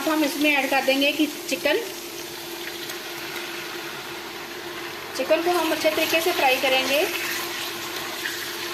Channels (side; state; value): both; identical; correlation 1.00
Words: हम इसमें ऐड कर देंगे कि चिकन को हम अच्छे तरीके से फ्राई करेंगे।